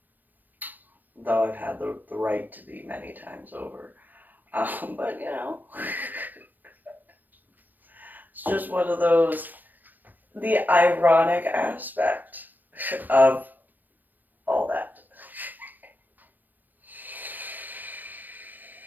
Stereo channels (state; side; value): late; left; 0.089 ms